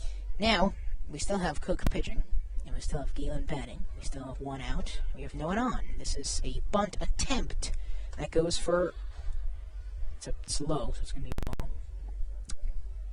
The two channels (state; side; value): identical; both; correlation 1.00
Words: Now we still have Cook pitching, and we still have Galen batting. We still have one out. We have no one on. This is a bunt attempt that goes for. It's low, so it's going to be a ball.